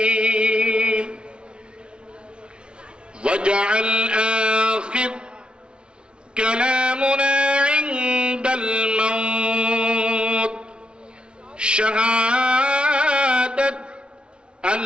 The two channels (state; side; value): late; left; 0.057 ms